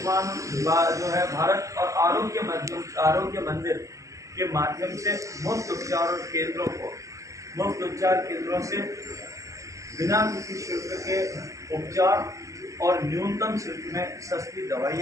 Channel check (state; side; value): late; left; 0.16 ms